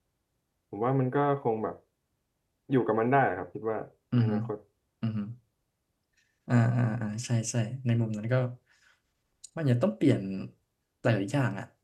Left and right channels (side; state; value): both; identical; correlation 1.00